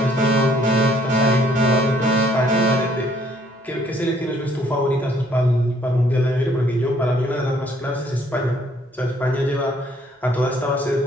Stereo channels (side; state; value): both; normal; correlation 0.63